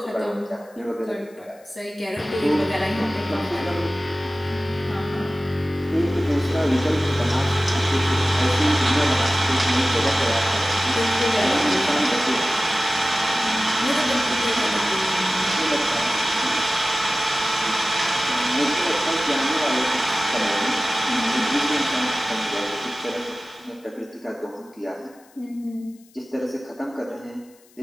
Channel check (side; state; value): left; noise; hiss, 29 dB below the sound